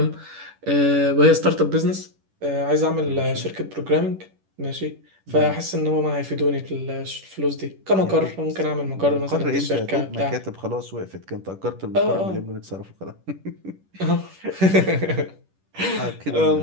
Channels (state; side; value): late; left; 11 ms